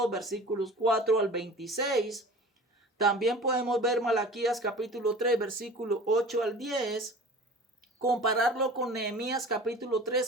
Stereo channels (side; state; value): both; normal; correlation 0.40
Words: versículos 4 al 26. También podemos ver Malaquías capítulo 3 versículo 8 al 10. Compararlo con Nehemías capítulo